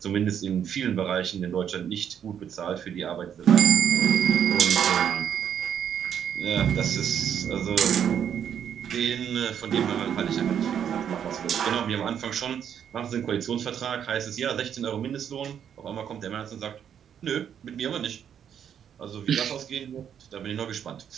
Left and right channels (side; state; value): left; quieter; 8.7 dB